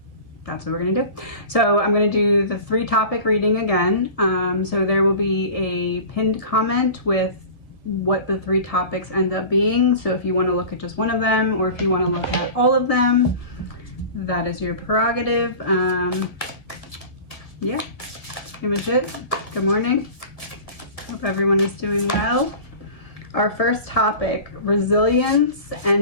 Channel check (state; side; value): late; right; 1.7 ms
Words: that's what we're going to do. So I'm going to do the 3-topic reading again. So there will be a pinned comment with what the 3 topics end up being. So if you want to look at just one of them or if you want to look at all of them, that is your prerogative. Yeah, that's pretty much it. Good morning. Hope everyone is doing well. Our first topic, resilience